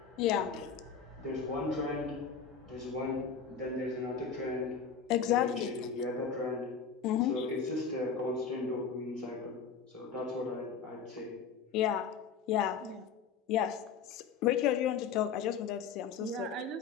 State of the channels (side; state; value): right; quieter; 6.2 dB